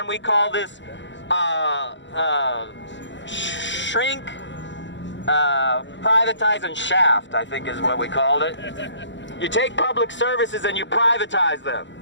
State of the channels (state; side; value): late; right; 0.53 ms